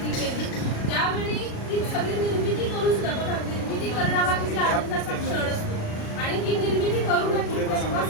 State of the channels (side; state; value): right; late; 36 ms